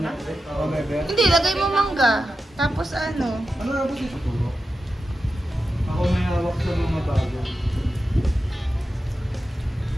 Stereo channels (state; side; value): normal; both; correlation 0.91